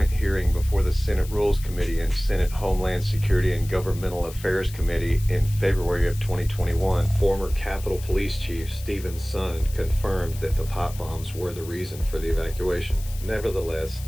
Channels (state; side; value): noise; left; hiss, 17 dB below the sound